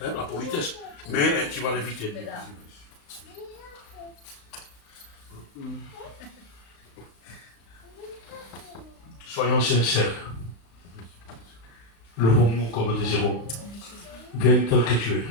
hein, la politesse. Mais tu vas l'éviter. Soyons sincères. Levons-nous comme des héros. Viens tel que tu es.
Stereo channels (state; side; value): late; right; 35 ms